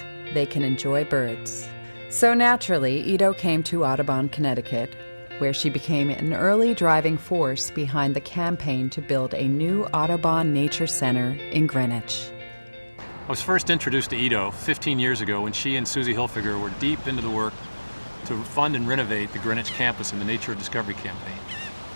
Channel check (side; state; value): both; inverted; correlation -1.00